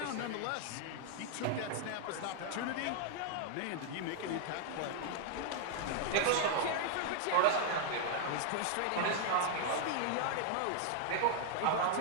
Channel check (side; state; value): both; different; correlation 0.00